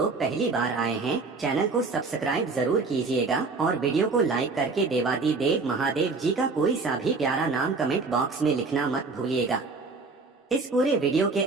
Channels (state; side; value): quieter; left; 4.1 dB